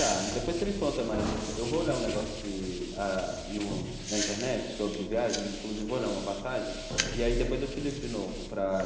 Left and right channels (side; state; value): both; identical; correlation 1.00